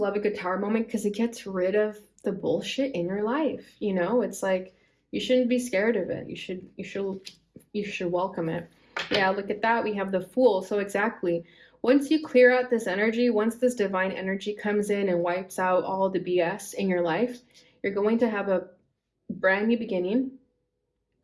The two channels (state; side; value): identical; both; correlation 1.00